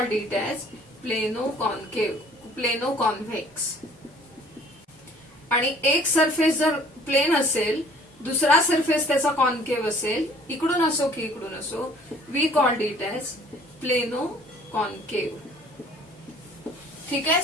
it as plano concave, plano convex. आणि एक सरफेस जर प्लेन असेल, दुसरा सरफेस त्याचा कॉन्केव असेल, इकडून असो की इकडून असो, we called it as plano concave. ठीक आहे,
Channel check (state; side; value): normal; both; correlation 0.54